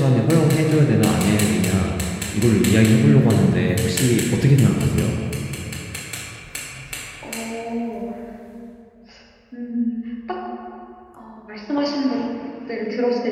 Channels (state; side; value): identical; both; correlation 1.00